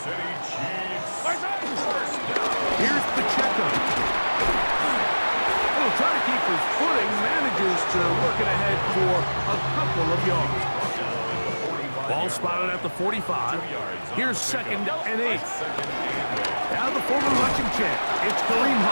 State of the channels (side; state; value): both; inverted; correlation -1.00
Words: Here's Pacheco. He'll try to keep his footing, manages to work it ahead for a couple of yards. Ball spotted at the 45. Here's second and 8. Now the former rushing champ, it's Kareem